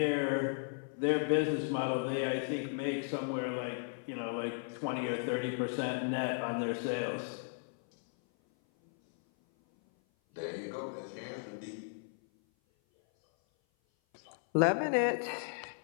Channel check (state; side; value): silent; right; 54 dB below the other